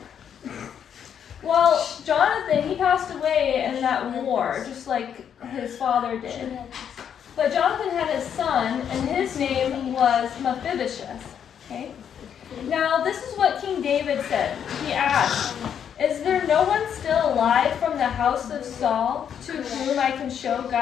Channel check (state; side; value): quieter; right; 8.5 dB